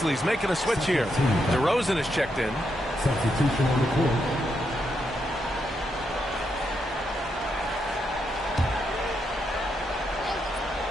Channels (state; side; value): normal; both; correlation 0.81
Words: making a switch here. DeRozan is checked in. Substitution on the court.